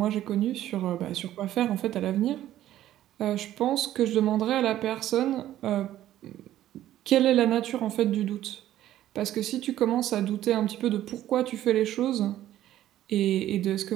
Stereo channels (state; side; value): quieter; left; 13.0 dB